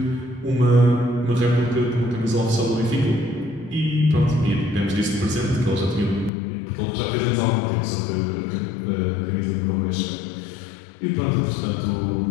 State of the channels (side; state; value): right; drops out; at 6.3 s